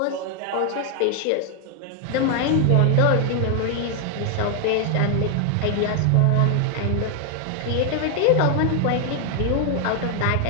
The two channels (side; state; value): both; different; correlation 0.00